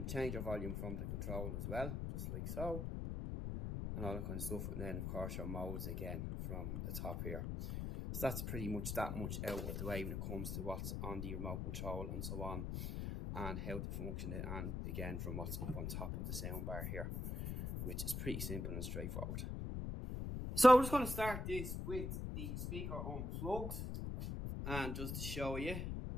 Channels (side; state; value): left; noise; rumble, 2 dB below the sound